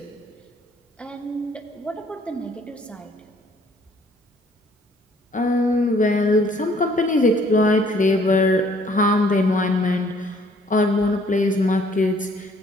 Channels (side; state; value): both; normal; correlation 0.61